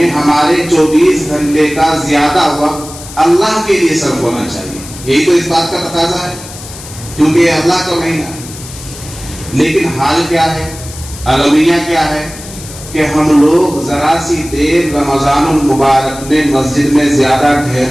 ہمارے 24 گھنٹے کا زیادہ وقت اللہ کے لیے صرف ہونا چاہیے. یہی تو اس بات کا تقاضا ہے کیونکہ یہ اللہ کا مہینہ ہے. لیکن حال کیا ہے، المیہ کیا ہے کہ ہم لوگ ذرا سی دیر رمضان المبارک میں مسجد میں زیادہ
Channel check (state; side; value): noise; left; hiss, 15 dB below the sound